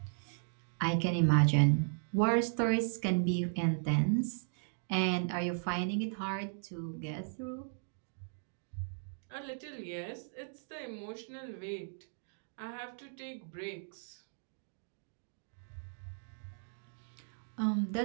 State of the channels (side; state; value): left; silent; digital silence